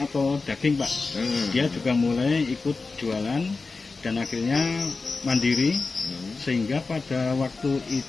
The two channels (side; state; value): right; quieter; 4.0 dB